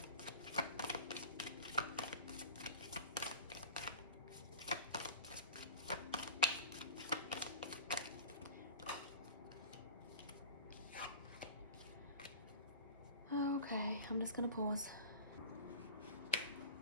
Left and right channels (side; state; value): both; inverted; correlation -0.36